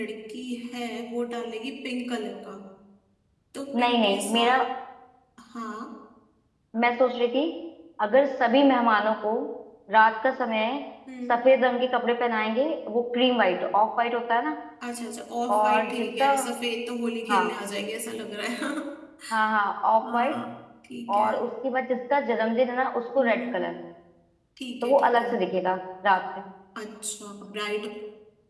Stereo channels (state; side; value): identical; both; correlation 1.00